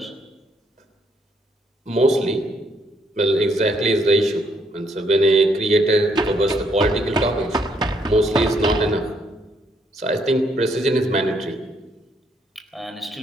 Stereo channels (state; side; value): normal; both; correlation 0.71